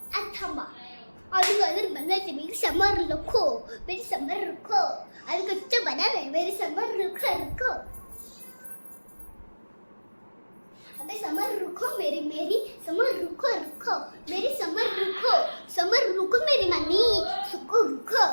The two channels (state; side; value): inverted; both; correlation -1.00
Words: आता थांबा अजून अजून बनायचे मेरे समोर रखो मेरे समोर रखो अभी कुछ बना नहीं मेरे समोर रखो रखो अबे समर रुको मेरी समर रुको रुको मेरी समर रुको मेरी मनी सुको रुको